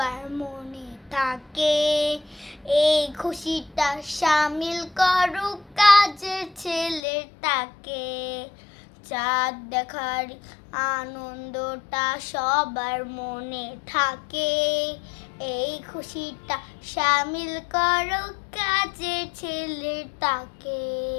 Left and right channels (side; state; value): right; drops out; at 7.0 s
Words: মনে থাকে, এই খুশিটা সামিল করুক কাজের ছেলেটাকে। চাঁদ দেখার আনন্দটা সবার মনে থাকে, এই খুশিটা সামিল করো কাজের ছেলেটাকে।